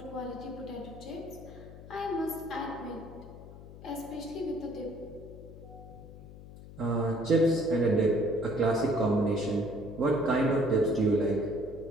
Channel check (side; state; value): left; noise; hum, 16 dB below the sound